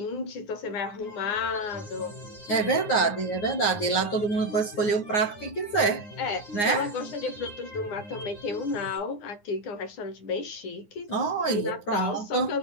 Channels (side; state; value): right; late; 9.7 ms